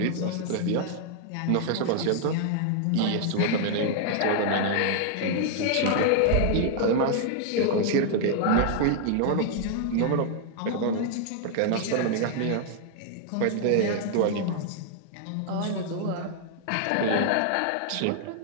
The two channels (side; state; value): both; different; correlation 0.00